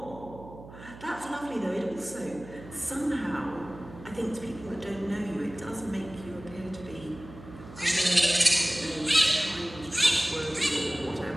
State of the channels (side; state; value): right; noise; hum, 16 dB below the sound